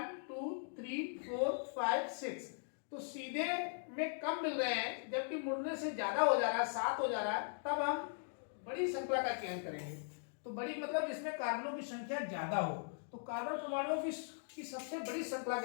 2 3 4 5 6। तो सीधे में कम मिल रहे हैं जबकि मुड़ने से ज्यादा हो जा रहा है, 7 हो जा रहा है। तब हम बड़ी श्रृंखला का चयन करेंगे। तो बड़ी मतलब जिसमें कार्बनों की संख्या ज्यादा हो। तो कार्बन परमाणुओं की सबसे बड़ी श्रृंखला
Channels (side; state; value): right; silent; digital silence